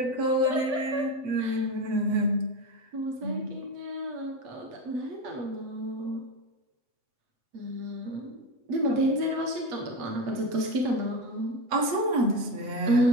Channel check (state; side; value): late; left; 7.9 ms